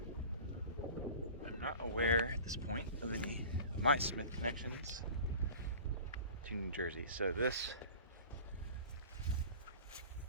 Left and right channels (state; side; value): inverted; both; correlation -0.40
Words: I'm not aware at this point of any of my Smith connections to New Jersey, so this,